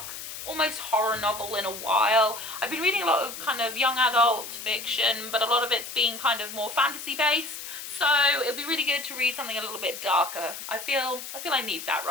almost horror novel in a while. I've been reading a lot of kind of young adult fiction, but a lot of it's been kind of more fantasy based. So it'll be really good to read something a little bit darker. I feel I need that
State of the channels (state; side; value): noise; left; hiss, 9 dB below the sound